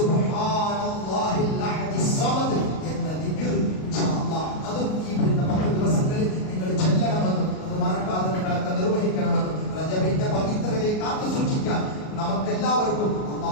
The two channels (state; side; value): late; right; 38 ms